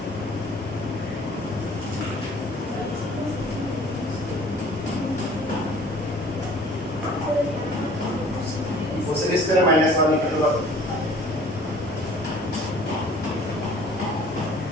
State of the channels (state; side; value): normal; both; correlation 0.51